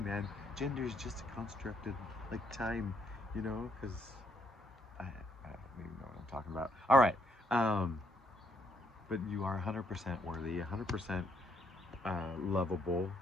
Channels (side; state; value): both; normal; correlation 0.73